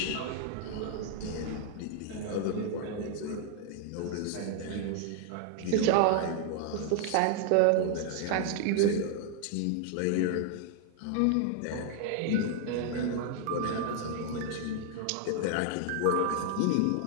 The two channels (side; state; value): both; different; correlation 0.00